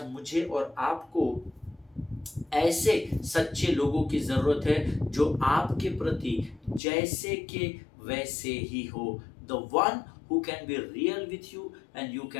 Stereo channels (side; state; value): right; drops out; at 6.8 s